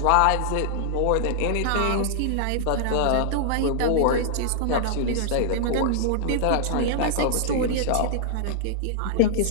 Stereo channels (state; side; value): different; both; correlation -0.01